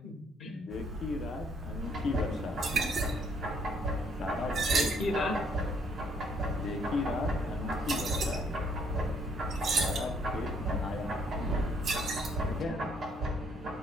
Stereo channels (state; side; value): normal; both; correlation 0.67